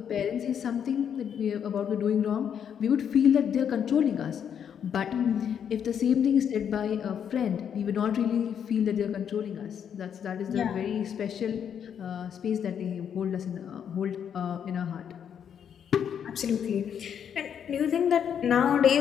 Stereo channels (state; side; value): quieter; right; 8.3 dB